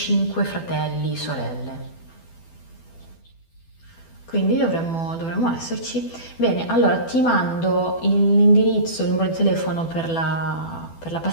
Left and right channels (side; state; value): right; late; 12 ms